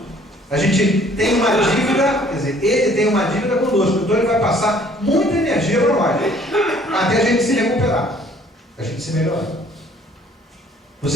A gente tem uma dívida, quer dizer, ele tem uma dívida conosco, então ele vai passar muita energia para nós, até a gente se recuperar, a gente se melhorar.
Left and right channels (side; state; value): both; normal; correlation 0.58